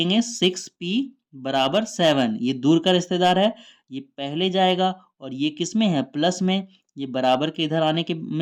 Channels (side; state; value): both; identical; correlation 1.00